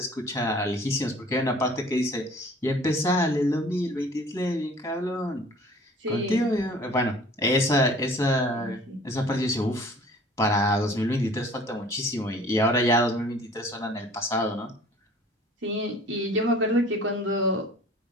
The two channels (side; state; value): both; normal; correlation 0.49